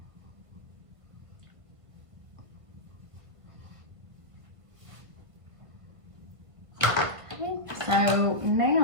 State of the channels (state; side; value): late; left; 1.5 ms